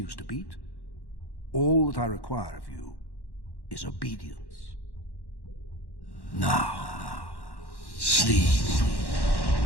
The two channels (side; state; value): right; late; 1.1 ms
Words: to beat, all that I require of you is obedience. Now, sleep.